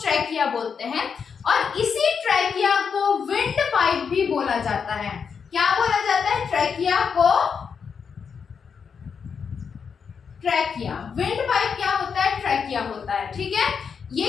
ट्रैकिया बोलते हैं, और इसी ट्रैकिया को विंड पाइप भी बोला जाता है। क्या बोला जाता है, ट्रैकिया को ट्रैकिया। विंड पाइप क्या होता है, ट्रैकिया होता है। ठीक है, ये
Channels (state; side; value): quieter; right; 6.3 dB